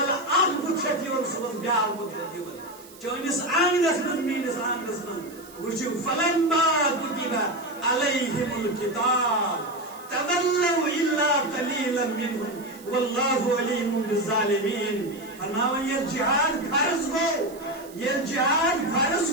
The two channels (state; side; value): noise; right; hiss, 21 dB below the sound